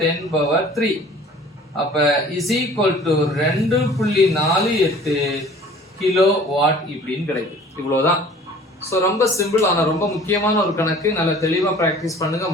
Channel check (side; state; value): both; normal; correlation 0.48